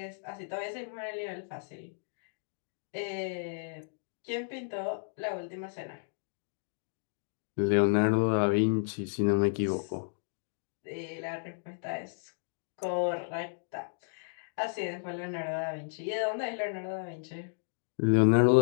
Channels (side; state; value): right; silent; digital silence